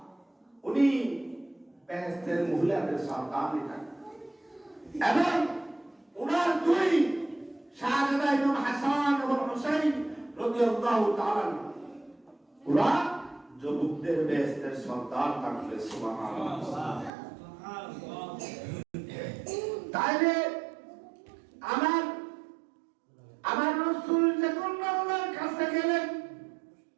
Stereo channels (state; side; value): drops out; left; at 17.1 s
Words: উনি বেহেশতের মহিলাদের সর্দারনি থাকেন। এবং ওনার দুই শাহজাদা ইমাম হাসান এবং হুসাইন রাদিয়াল্লাহু তাআলা ওরা যুবকদের বেহেশতের সর্দার থাকবে। সুবহানাল্লাহ। তাইলে আমার রাসূল যখন আল্লাহর কাছে গেলেন